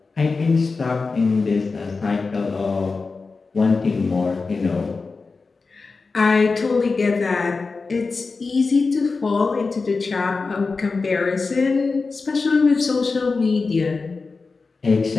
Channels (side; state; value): right; quieter; 4.2 dB